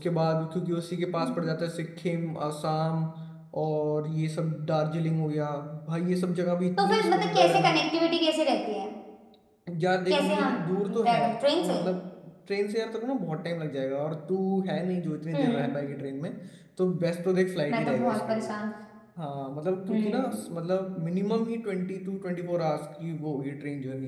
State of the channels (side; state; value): both; identical; correlation 1.00